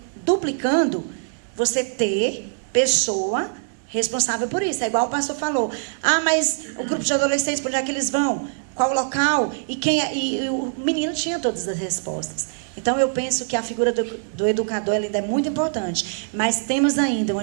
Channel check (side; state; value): left; silent; digital silence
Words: duplicando, você ter pessoa responsável por isso. É igual o pastor falou. Ah, mas o grupo de adolescentes, por onde é que eles vão? Qual o local? E o menino tinha todas as respostas. Então, eu penso que a figura do educador ainda é muito importante, mas temos ainda uma